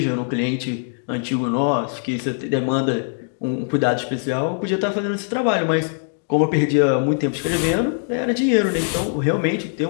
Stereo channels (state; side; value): silent; right; digital silence